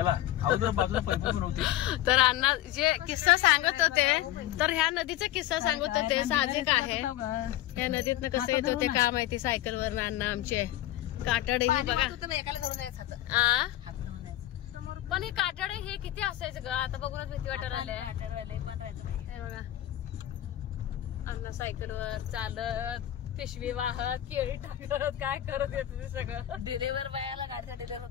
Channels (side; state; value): right; quieter; 13.9 dB